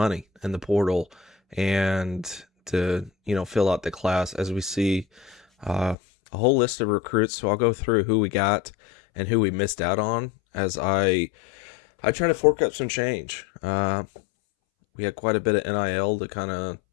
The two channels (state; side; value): drops out; right; at 6.0 s